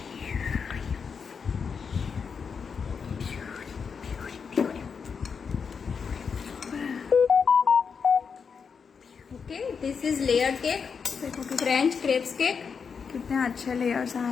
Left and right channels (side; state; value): right; quieter; 6.0 dB